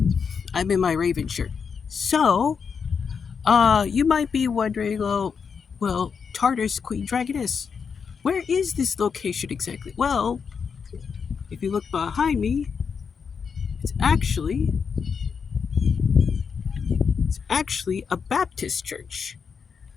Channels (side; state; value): right; quieter; 6.1 dB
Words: I'm in my Raven shirt. So, you might be wondering, Tartar's Queen Dragoness, where is this location exactly? Well, if you look behind me, it's actually it's actually a Baptist church.